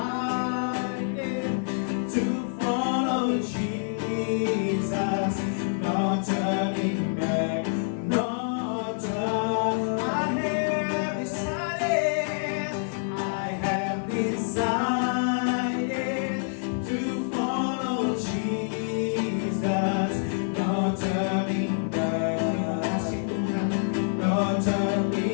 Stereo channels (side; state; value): right; silent; digital silence